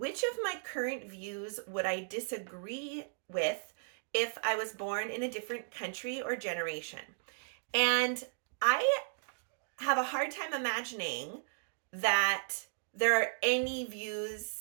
of my current views would I disagree with if I was born in a different country or generation? And I have a hard time imagining that there are any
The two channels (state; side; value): silent; left; digital silence